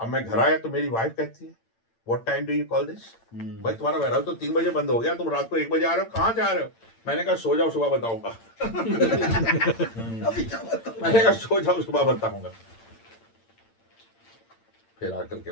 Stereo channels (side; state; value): right; late; 8.8 ms